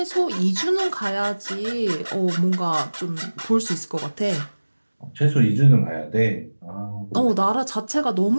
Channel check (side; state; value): both; inverted; correlation -1.00